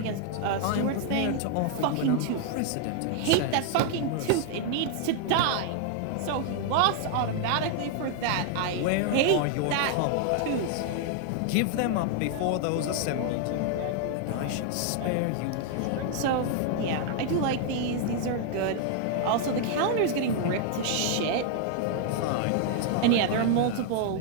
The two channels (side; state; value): both; different; correlation 0.00